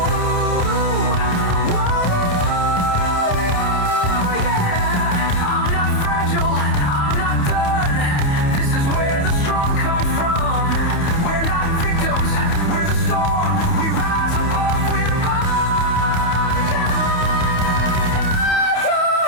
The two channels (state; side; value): late; right; 28 ms